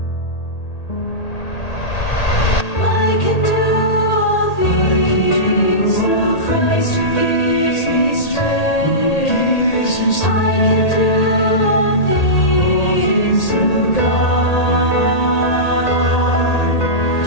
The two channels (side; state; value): right; late; 1.8 ms